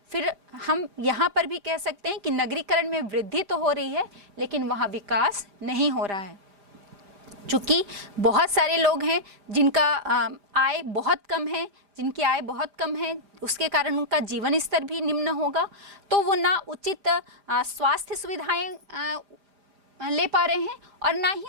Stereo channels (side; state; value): left; late; 5.0 ms